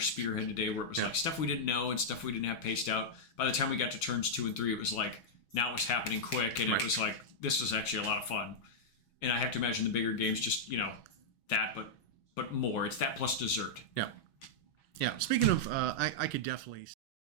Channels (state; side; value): late; right; 6.3 ms